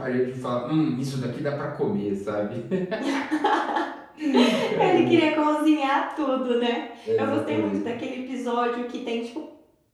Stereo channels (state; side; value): identical; both; correlation 1.00